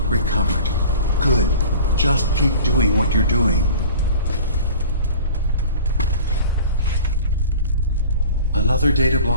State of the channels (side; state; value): both; inverted; correlation -0.42